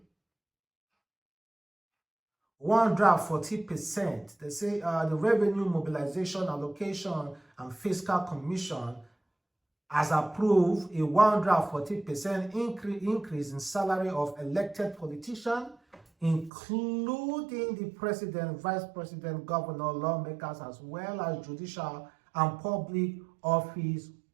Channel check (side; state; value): left; drops out; at 16.5 s